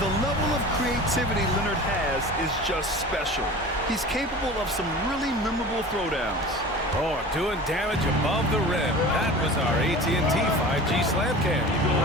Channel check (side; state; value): both; normal; correlation 0.37